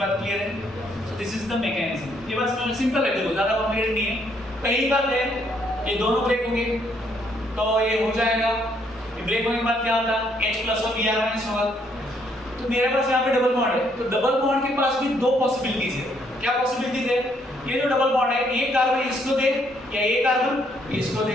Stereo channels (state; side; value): normal; both; correlation 0.70